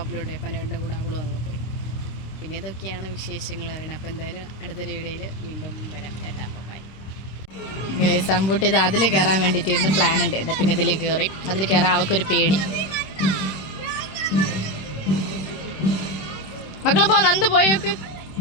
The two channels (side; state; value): right; late; 26 ms